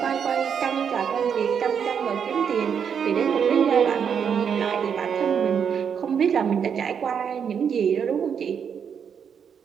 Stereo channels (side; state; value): left; quieter; 7.3 dB